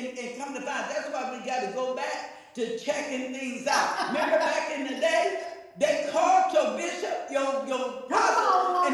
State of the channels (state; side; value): identical; both; correlation 1.00